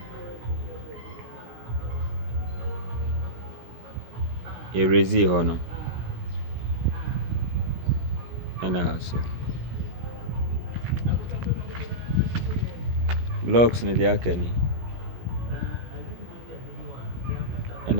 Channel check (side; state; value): left; late; 16 ms